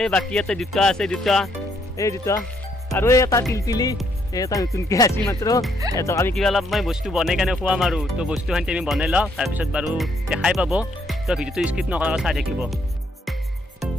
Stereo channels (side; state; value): both; normal; correlation 0.71